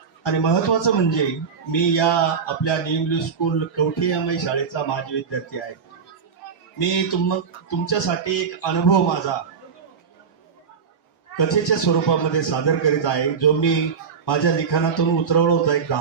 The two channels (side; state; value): left; quieter; 6.1 dB